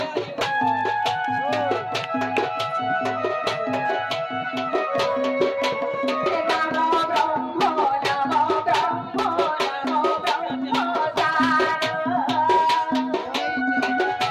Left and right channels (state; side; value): identical; both; correlation 1.00